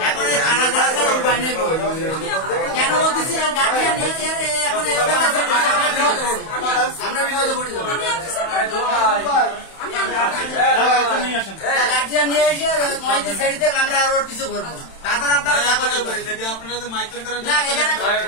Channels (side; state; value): right; late; 31 ms